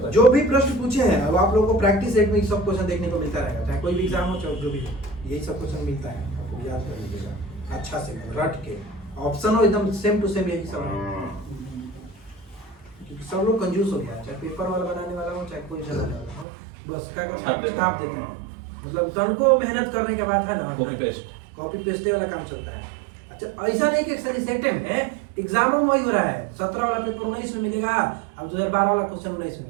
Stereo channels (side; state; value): left; drops out; at 16.4 s